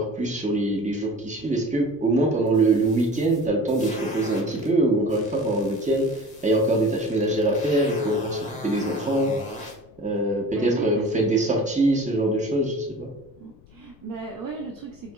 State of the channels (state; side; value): noise; left; rumble, 26 dB below the sound